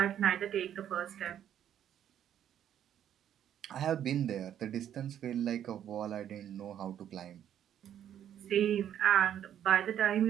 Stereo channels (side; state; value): left; quieter; 10.2 dB